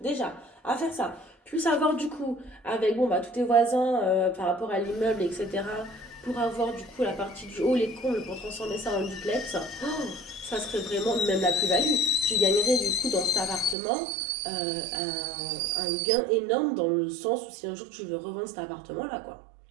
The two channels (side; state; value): left; drops out; at 13.8 s